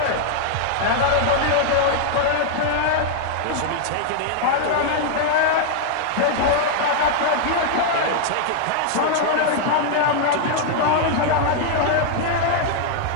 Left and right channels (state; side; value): different; both; correlation 0.00